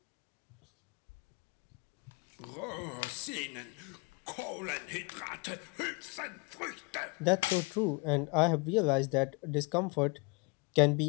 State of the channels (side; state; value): right; quieter; 29.1 dB